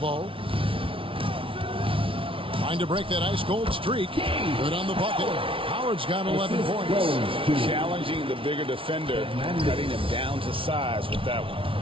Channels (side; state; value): left; late; 0.25 ms